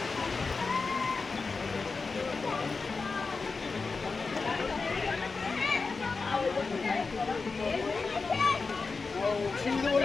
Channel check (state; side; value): quieter; right; 4.3 dB